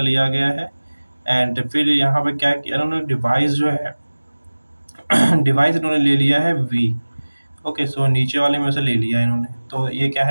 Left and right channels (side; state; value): both; inverted; correlation -1.00